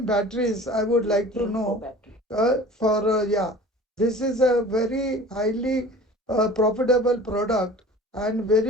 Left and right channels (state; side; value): normal; both; correlation 0.42